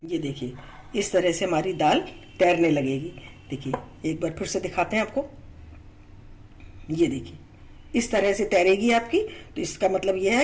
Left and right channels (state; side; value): identical; both; correlation 1.00